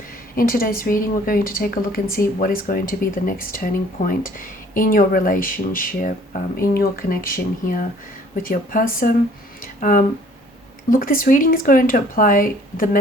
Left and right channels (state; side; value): normal; both; correlation 0.56